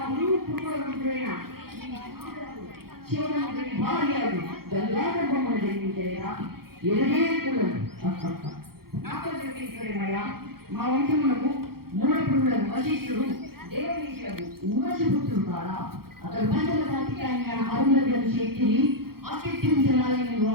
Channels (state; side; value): late; left; 0.94 ms